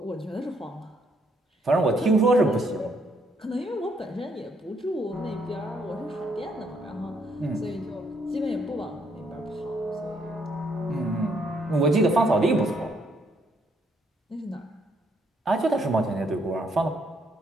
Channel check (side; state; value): both; normal; correlation 0.71